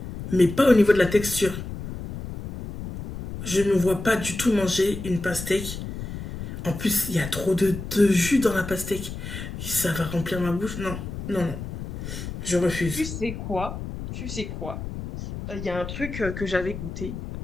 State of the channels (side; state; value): left; noise; rumble, 8 dB below the sound